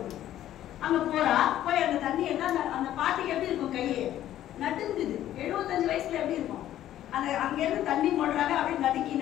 அங்க போறா. போய் அந்த தண்ணி என்ன, அந்த பாட்டிக்கு எப்படி இருக்கும், கையே நடுங்குது. 75 வயசுல எப்படி இருக்கும்? அந்த அங்க இருந்து தண்ணி போடுறாங்க, அப்படியே நடுக்கி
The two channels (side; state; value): right; quieter; 12.5 dB